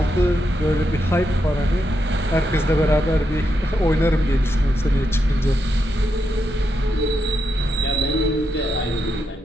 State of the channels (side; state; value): both; normal; correlation 0.83